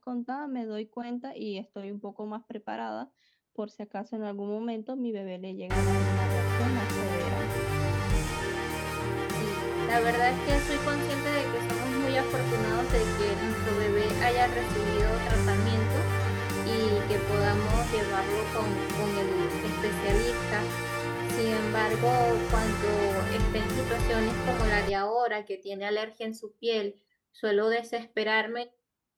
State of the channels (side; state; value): both; identical; correlation 1.00